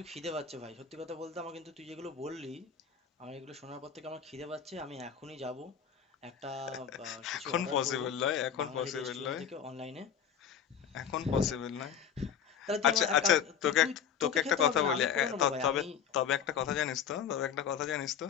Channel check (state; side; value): quieter; right; 7.9 dB